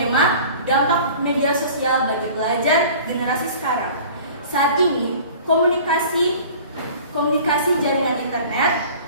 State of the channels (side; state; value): both; inverted; correlation -0.44